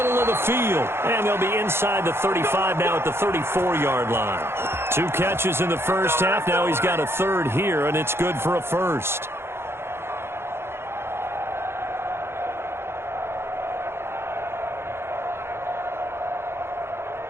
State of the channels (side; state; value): left; late; 0.12 ms